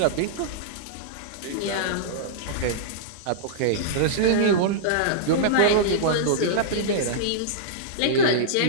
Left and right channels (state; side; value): different; both; correlation -0.03